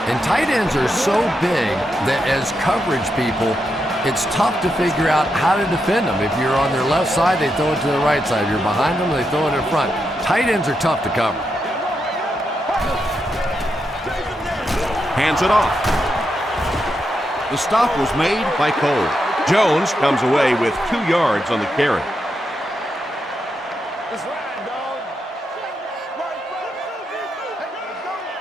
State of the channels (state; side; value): normal; both; correlation 0.84